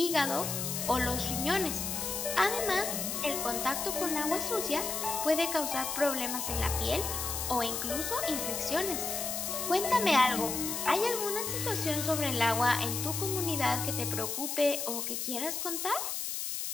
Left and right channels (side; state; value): left; noise; hiss, 3 dB below the sound